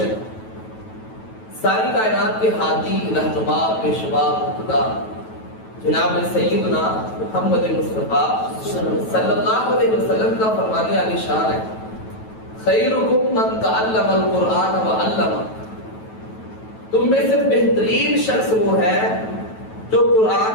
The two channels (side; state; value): right; late; 9.2 ms